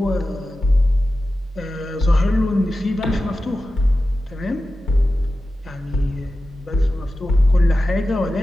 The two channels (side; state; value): both; normal; correlation 0.93